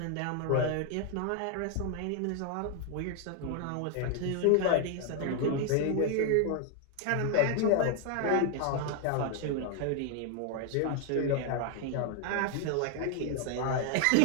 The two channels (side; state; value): both; different; correlation 0.00